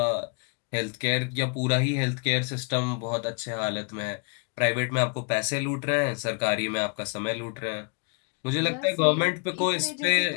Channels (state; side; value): quieter; right; 35.7 dB